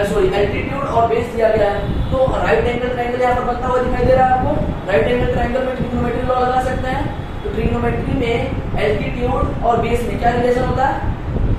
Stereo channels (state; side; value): identical; both; correlation 1.00